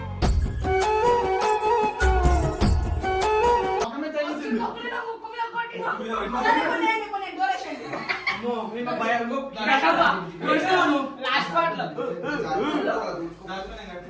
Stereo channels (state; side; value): identical; both; correlation 1.00